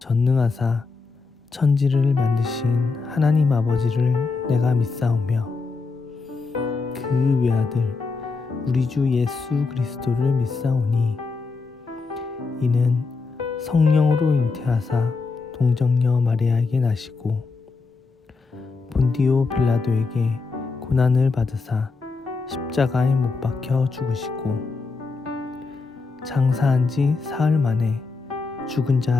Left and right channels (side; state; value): right; quieter; 4.2 dB